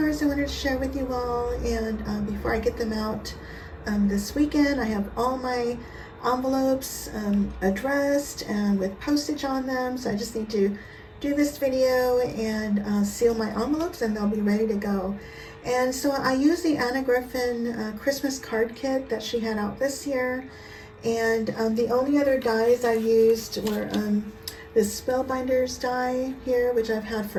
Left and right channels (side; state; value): both; identical; correlation 1.00